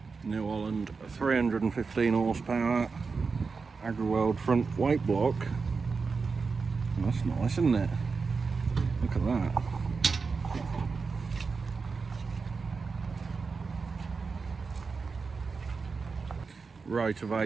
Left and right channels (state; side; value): quieter; left; 4.8 dB